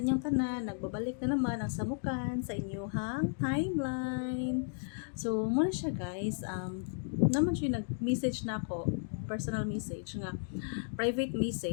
inyong tanan, nagbabalik na naman ang samukan sa inyong timeline. So muna siya guys, naman siya nag-message na ako, personal message nga, private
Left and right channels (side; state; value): right; silent; digital silence